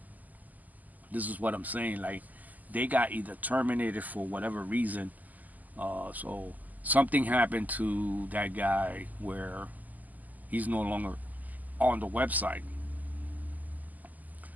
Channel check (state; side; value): late; left; 0.081 ms